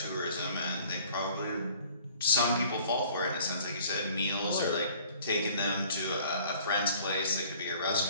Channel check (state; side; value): inverted; both; correlation -0.53